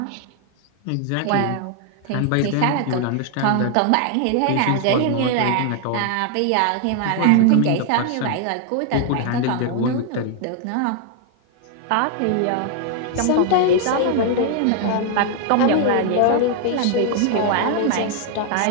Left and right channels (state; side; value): different; both; correlation 0.00